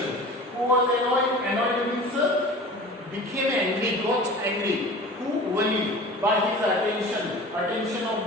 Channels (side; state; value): both; normal; correlation 0.39